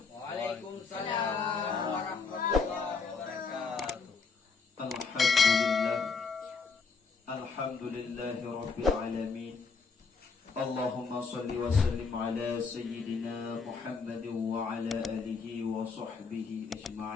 Waalaikumsalam warahmatullahi wabarakatuh. Alhamdulillahi rabbil alamin. Allahumma salli wa sallim ala sayyidina Muhammadin wa ala alihi wa sahbihi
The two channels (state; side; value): quieter; right; 4.9 dB